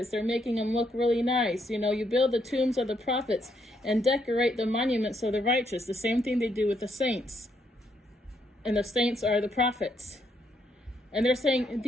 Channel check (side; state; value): both; normal; correlation 0.75